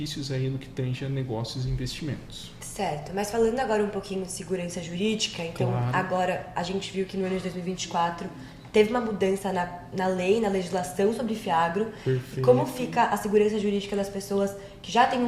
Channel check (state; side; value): identical; both; correlation 1.00